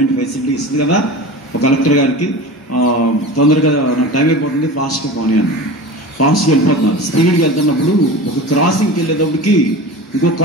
ఫెసిలిటీ ఇస్తుంది కదా ఒక కలెక్టర్ గారికి. తొందరగా నాకు టైం అయిపోతుంది, ఫాస్ట్గా పోనీ అన్నారు. ఫాస్ట్గా వెళ్ళిపోతున్నారు. స్పీడ్గా వెళ్తున్నప్పుడు ఒక క్రాసింగ్కి వెళ్ళేటప్పటికి ఇంకో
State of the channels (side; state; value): both; normal; correlation 0.32